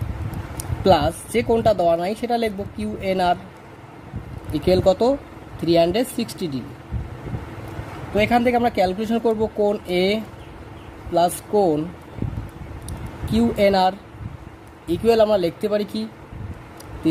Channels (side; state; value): both; identical; correlation 1.00